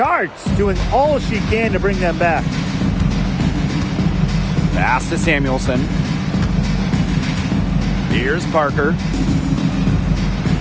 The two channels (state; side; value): identical; both; correlation 1.00